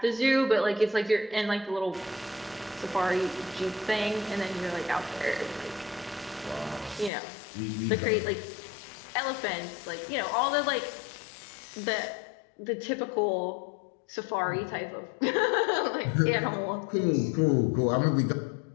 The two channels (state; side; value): drops out; right; at 7.1 s